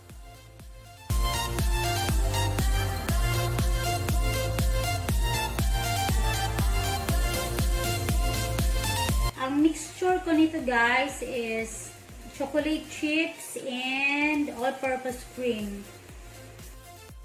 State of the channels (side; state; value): both; identical; correlation 1.00